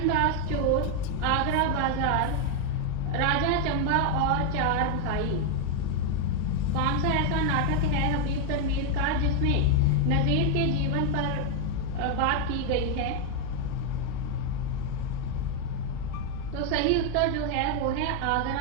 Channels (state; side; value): different; both; correlation 0.01